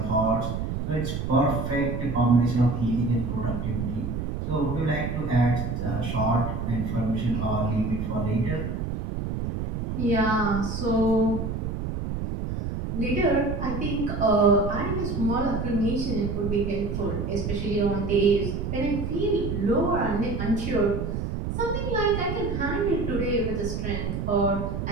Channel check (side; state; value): right; noise; rumble, 3 dB below the sound